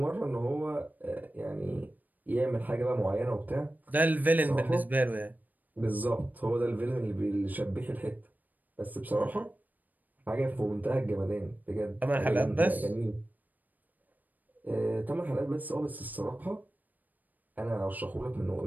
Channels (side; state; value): left; late; 0.084 ms